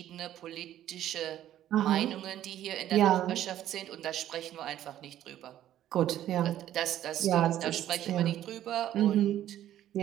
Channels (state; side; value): quieter; left; 12.2 dB